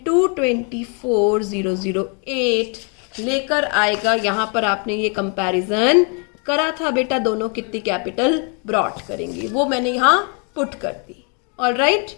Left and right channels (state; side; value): quieter; right; 37.3 dB